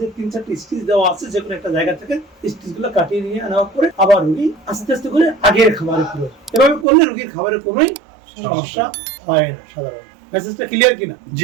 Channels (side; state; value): left; drops out; at 6.9 s